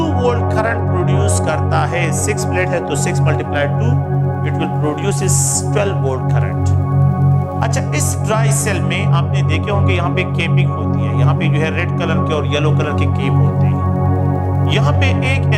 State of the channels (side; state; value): both; identical; correlation 1.00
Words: वोल्ट करंट प्रोड्यूस करता है। 6 प्लेट है तो 6 multiply 2 it will produce 12 volt current. अच्छा, इस ड्राई सेल में आपने देखे होंगे यहाँ पे केपिंग होती है, यहाँ पे जो है रेड कलर के और येलो कलर के केप होते हैं। यहाँ पे एक